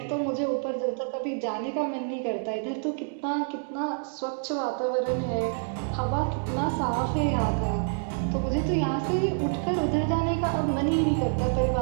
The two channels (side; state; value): left; silent; 60 dB below the other